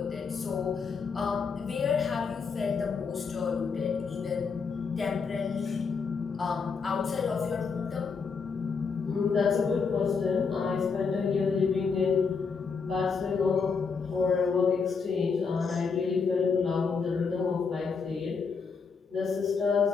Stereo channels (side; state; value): right; quieter; 5.3 dB